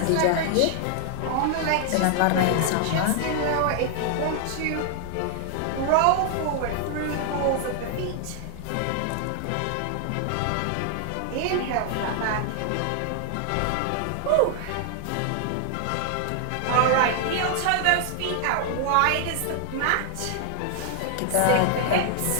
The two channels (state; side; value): different; both; correlation 0.00